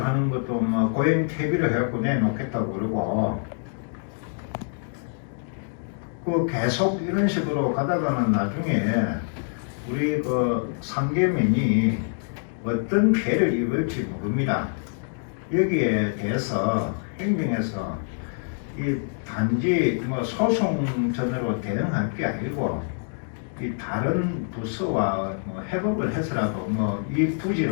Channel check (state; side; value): silent; right; digital silence